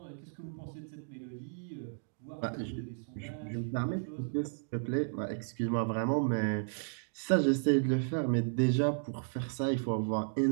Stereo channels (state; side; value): silent; left; digital silence